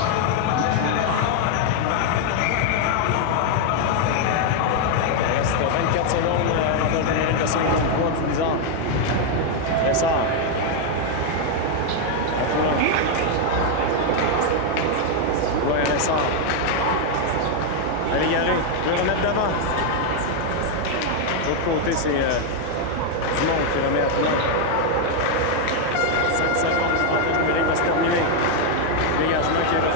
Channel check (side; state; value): both; different; correlation 0.00